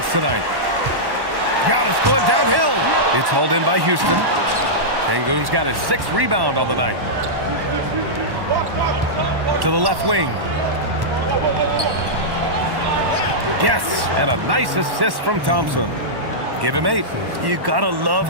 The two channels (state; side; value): late; left; 1.1 ms